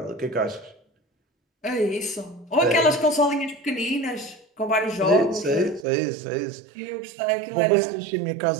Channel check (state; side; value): drops out; left; at 5.9 s